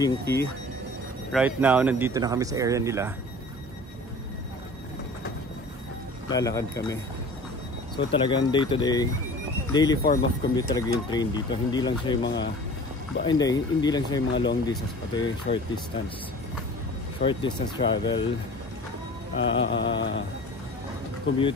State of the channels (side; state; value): both; normal; correlation 0.42